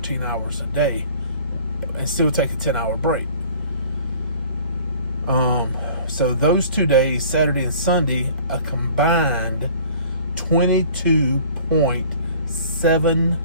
hours a day and still take a 10-hour break. So those 2 days, Saturday and Sunday, a combined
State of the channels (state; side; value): inverted; both; correlation -0.50